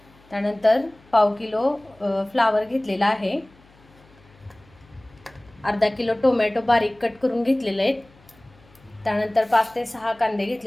त्यानंतर पाव किलो फ्लावर घेतलेला आहे. अर्धा किलो टोमॅटो बारीक कट करून घेतलेले आहेत. त्यानंतर 5 ते 6 कांदे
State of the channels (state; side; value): noise; left; hum, 28 dB below the sound